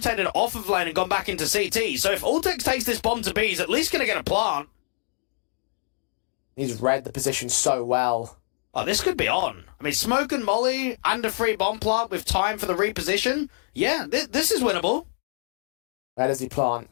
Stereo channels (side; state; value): right; silent; digital silence